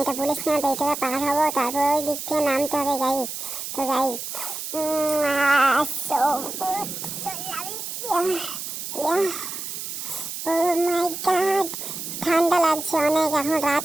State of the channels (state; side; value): noise; right; hiss, 7 dB below the sound